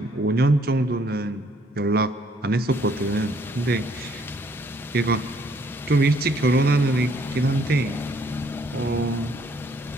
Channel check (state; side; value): normal; both; correlation 0.65